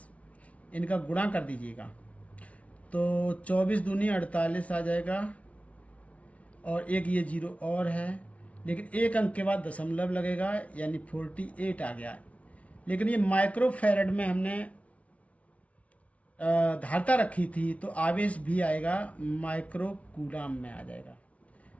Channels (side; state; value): right; late; 0.065 ms